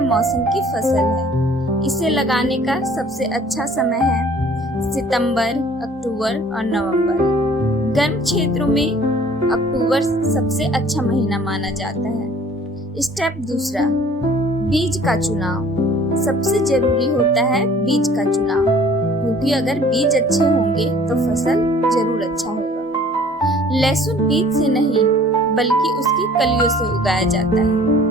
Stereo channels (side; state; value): both; normal; correlation 0.52